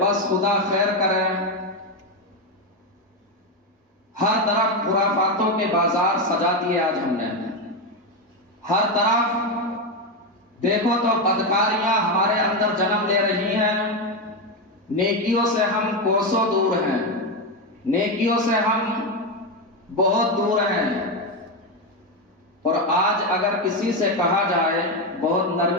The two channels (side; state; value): both; normal; correlation 0.10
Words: خدا خیر کرے۔ ہر طرف خرافاتوں کے بازار سجا دیے آج ہم نے، ہر طرف دیکھو تو بدکاریاں ہمارے اندر جنم لے رہی ہیں، نیکیوں سے ہم کوسوں دور ہیں، نیکیوں سے ہم بہت دور ہیں۔ اور آج اگر کسی سے کہا جائے، بہت